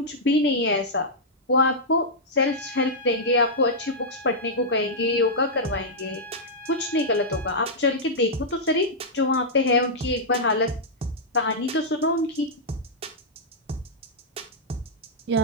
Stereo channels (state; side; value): normal; both; correlation -0.09